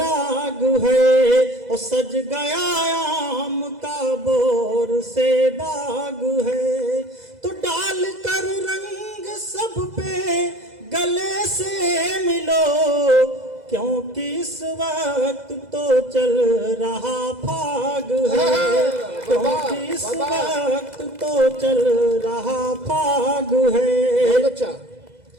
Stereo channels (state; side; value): late; left; 2.0 ms